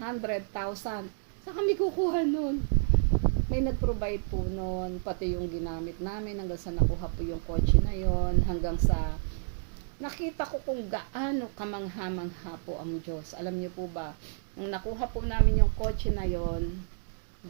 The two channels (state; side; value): silent; left; digital silence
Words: Saan kami kukuha nun? May nag-provide po nun, pati yung ginamit namin hanggang sa nakuha po yung kotse na yon, hanggang sa nakita ko kung gaano kamangha-mangha po ang Diyos. Alam niyo po ba, nung nakuha po namin yung kotse na yon,